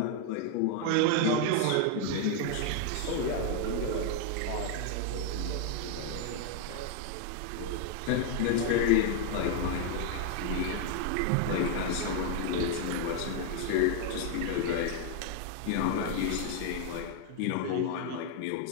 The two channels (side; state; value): both; different; correlation 0.00